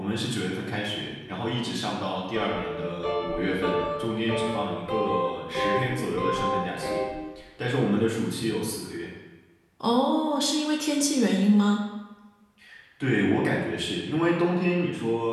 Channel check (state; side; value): identical; both; correlation 1.00